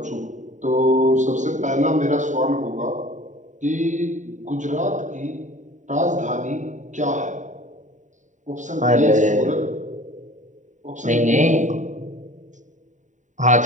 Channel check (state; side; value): late; left; 0.36 ms